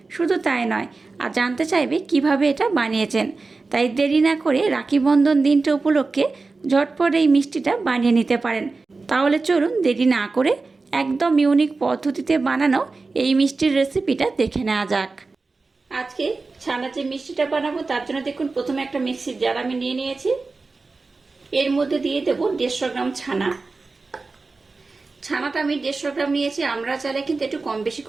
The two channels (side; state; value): left; quieter; 3.9 dB